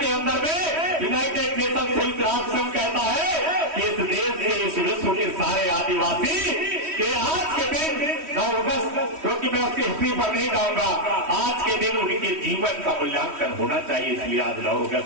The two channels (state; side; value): late; left; 3.1 ms